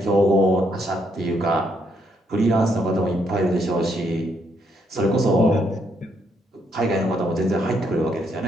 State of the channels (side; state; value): both; normal; correlation 0.74